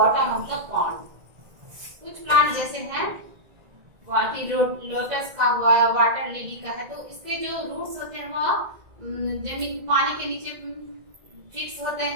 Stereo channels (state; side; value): late; left; 2.0 ms